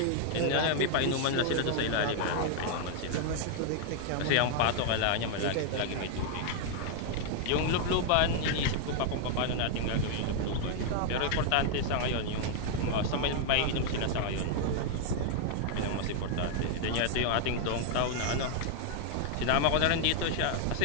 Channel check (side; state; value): both; different; correlation 0.00